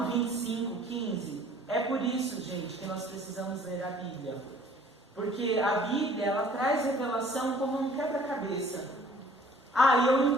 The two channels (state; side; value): normal; both; correlation 0.54